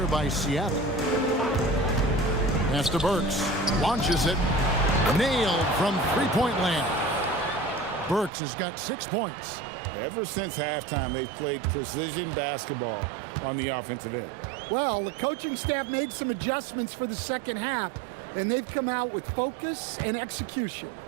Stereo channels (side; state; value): left; drops out; at 8.3 s